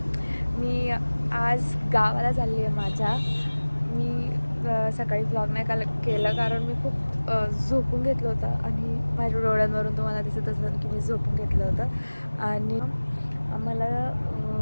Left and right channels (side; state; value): both; inverted; correlation -1.00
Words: मी आज गावाला चालली आहे माझ्या. मी सकाळी व्लॉग नाही केलं कारण मी खूप झोपून घेतलं होतं आणि माझ्या डोळ्यांवरून तुम्हाला दिसत असेल की मी झोपून घेतलं होतं. आणि मला